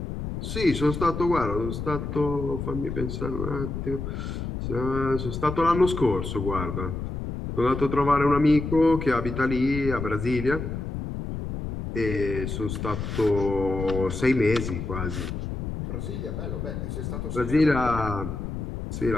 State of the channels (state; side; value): noise; left; rumble, 5 dB below the sound